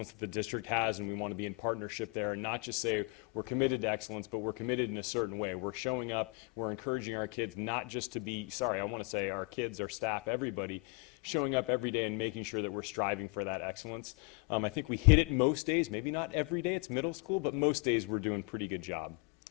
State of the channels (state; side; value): quieter; right; 31.6 dB